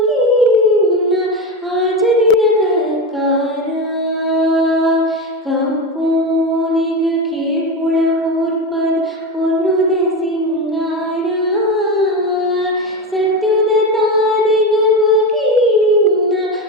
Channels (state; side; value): normal; both; correlation 0.19